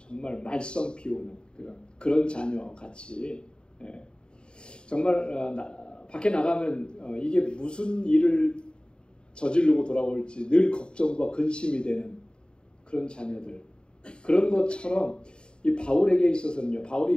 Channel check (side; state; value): right; late; 0.051 ms